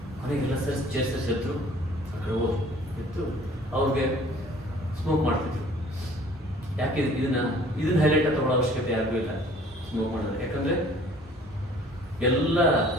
ಮನೆಗೆಲ್ಲ ಸೇರಿಸಿ ಎತ್ತು ಆ ಕಡೆ ಹೋಗಿ ಎತ್ತು ಅವ್ರಿಗೆ ಸ್ಮೋಕ್ ಮಾಡ್ತಿದ್ರು. ಯಾಕೆ ಇದನ್ನ ಹೈಲೈಟ್ ತಗೊಳ್ಳೋ ಅವಶ್ಯಕತೆ ಯಾರಿಗೂ ಇಲ್ಲ ಸ್ಮೋಕ್ ಮಾಡೋದು. ಯಾಕಂದರೆ ಎಲ್ಲ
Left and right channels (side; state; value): both; normal; correlation 0.53